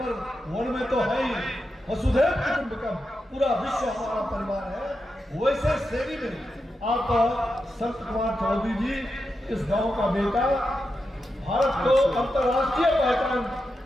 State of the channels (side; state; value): both; normal; correlation 0.88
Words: 1 में तो है ही, वसुधैव कुटुंबकम, पूरा विश्व हमारा परिवार है, वैसे श्रेणी में आप संत कुमार चौधरी जी, इस गांव का बेटा, भारत को अंतर्राष्ट्रीय पहचान